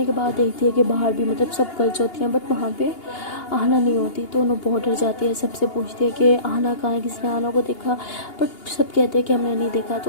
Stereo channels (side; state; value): right; late; 2.8 ms